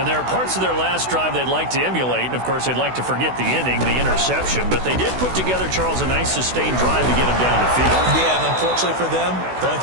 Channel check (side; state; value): left; late; 16 ms